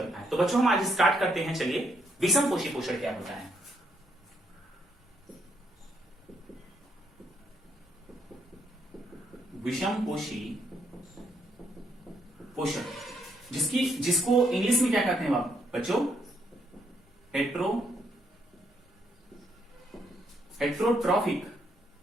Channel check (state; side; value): normal; both; correlation 0.75